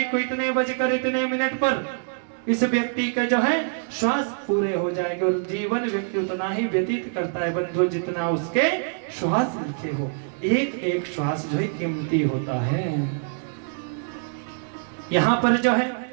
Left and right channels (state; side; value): silent; left; digital silence